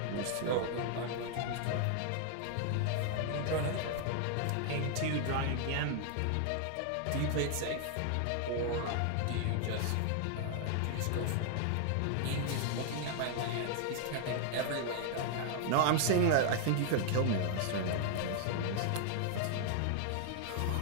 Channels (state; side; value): different; both; correlation 0.00